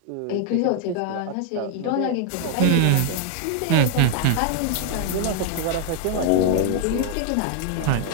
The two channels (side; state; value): both; different; correlation 0.00